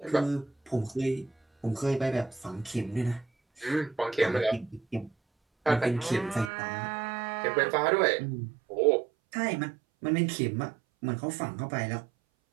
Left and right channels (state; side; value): drops out; left; at 6.5 s